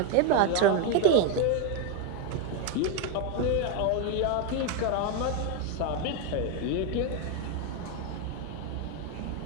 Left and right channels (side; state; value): both; different; correlation 0.02